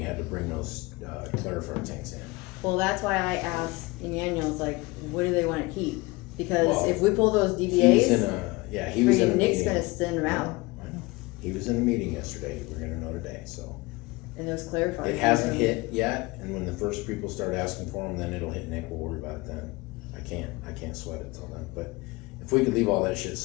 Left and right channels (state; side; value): quieter; right; 23.2 dB